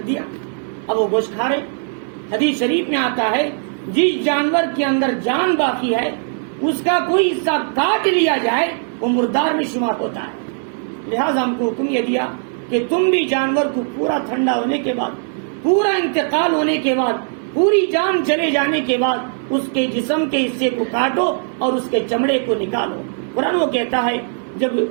دیا، اب وہ گوشت کھا رہے۔ حدیث شریف میں آتا ہے جس جانور کے اندر جان باقی ہے اس کا کوئی حصہ کاٹ لیا جائے وہ مردار میں شمار ہوتا ہے۔ لہذا ہم کو حکم یہ دیا کہ تم بھی جانور کو پورا ٹھنڈا ہونے کے بعد، پورا انتقال ہونے کے بعد پوری جان چلے جانے کے بعد اس کے جسم کے حصے کو کاٹو اور اس کے چمڑے کو نکالو۔ قرآن وہ کہتا ہے جب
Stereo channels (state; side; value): silent; left; 66 dB below the other